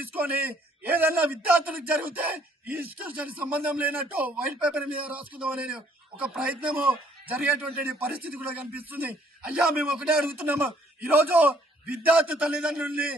ఏదన్నా విద్యార్థులకు జరిగితే ఈ ఇన్స్టిట్యూషన్ సంబంధం లేనట్టు వైట్ పేపర్ మీద రాసుకుందాం అనే ఒక ప్రయత్నము జరిగేటువంటి పరిస్థితి కూడా కనిపిస్తుంది. అయ్యా మేము ఒకటే అడుగుతున్నాము, ఈరోజు విద్యార్థి తల్లిదండ్రుల్ని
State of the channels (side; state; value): both; normal; correlation 0.63